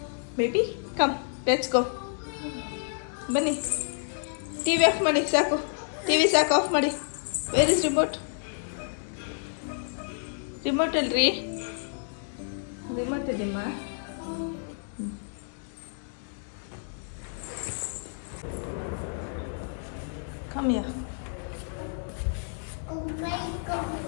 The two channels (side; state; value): right; silent; 58 dB below the other